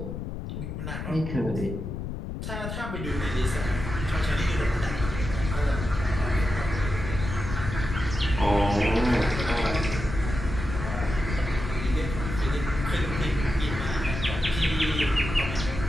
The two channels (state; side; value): noise; left; rumble, 6 dB below the sound